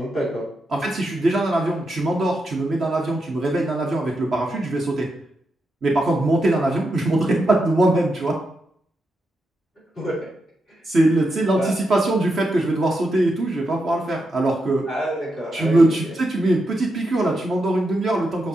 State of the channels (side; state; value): both; normal; correlation 0.85